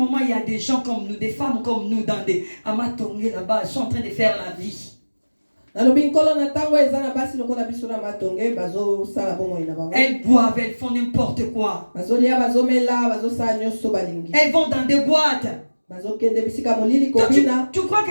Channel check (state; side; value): inverted; both; correlation -1.00